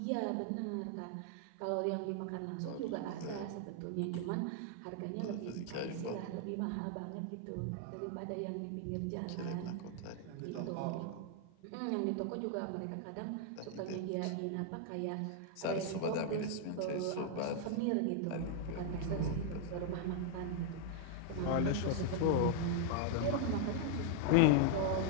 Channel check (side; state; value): both; different; correlation 0.00